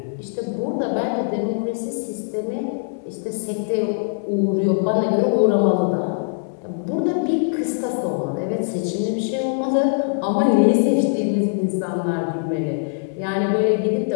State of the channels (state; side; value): silent; right; 64 dB below the other